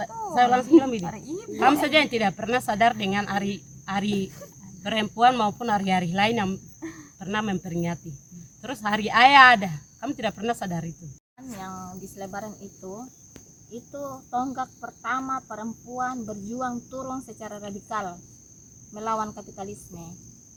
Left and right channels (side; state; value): both; identical; correlation 1.00